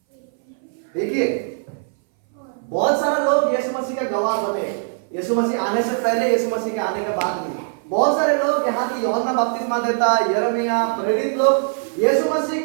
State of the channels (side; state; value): left; silent; 60 dB below the other